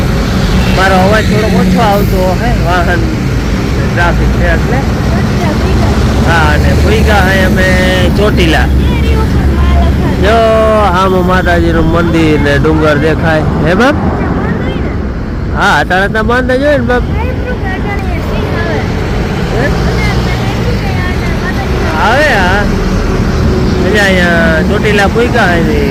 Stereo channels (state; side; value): identical; both; correlation 1.00